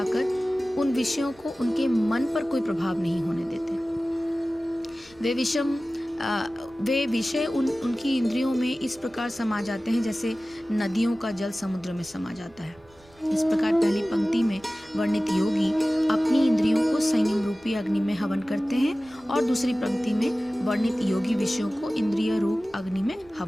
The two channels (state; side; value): noise; right; rumble, 29 dB below the sound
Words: उन विषयों को उनके मन पर कोई प्रभाव नहीं होने देते। वे विषय उनकी इंद्रियों में इस प्रकार समा जाते हैं जैसे नदियों का जल समुद्र में समा जाता है। इस प्रकार पहली पंक्ति में वर्णित योगी अपनी इंद्रियों को संयम रूपी रूपी अग्नि में हवन करते हैं और दूसरी पंक्ति में वर्णित योगी विषयों को इंद्रिय रूप अग्नि में